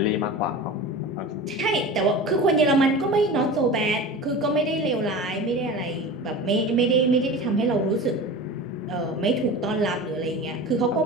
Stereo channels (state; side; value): normal; both; correlation 0.33